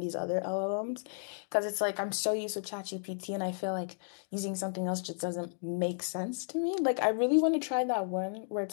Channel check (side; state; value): right; silent; digital silence